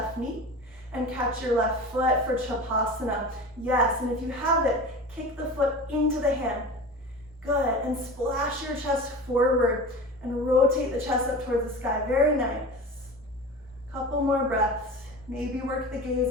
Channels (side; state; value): both; normal; correlation 0.33